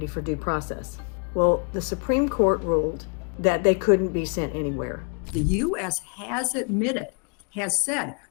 for due process. Well, the Supreme Court ruled that they couldn't be sent anywhere. The U.S. has admitted, has said,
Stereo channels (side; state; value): right; quieter; 38.1 dB